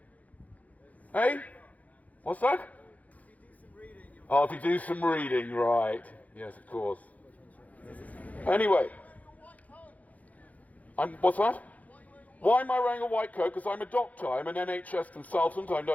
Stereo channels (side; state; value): right; late; 0.073 ms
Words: Hey? What's that? Oh, if you do some reading, right. Yes, of course. Anyway. What's that? Why am I wearing a white coat? Because I'm a doctor. I'm an NHS consultant. I